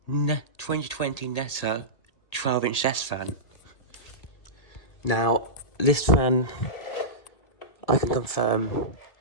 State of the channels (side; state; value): right; late; 1.8 ms